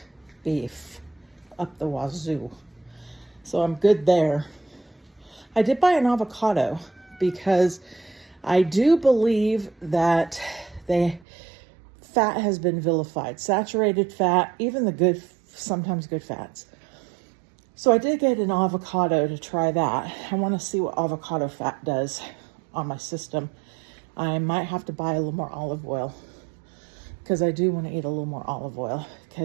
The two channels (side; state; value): left; drops out; at 11.2 s